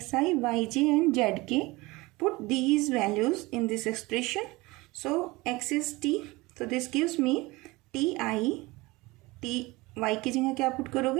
yj and zk. Put these values in this expression. So x is t. So this gives me ti, t y की जगह क्या put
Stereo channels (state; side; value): quieter; left; 22.2 dB